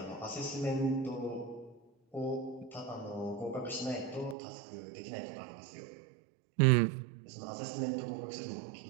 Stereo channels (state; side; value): drops out; left; at 4.4 s